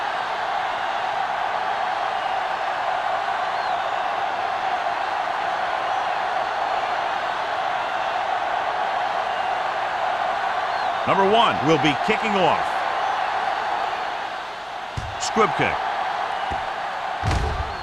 Number 1 will be kicking off. Squib kick.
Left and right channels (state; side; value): identical; both; correlation 1.00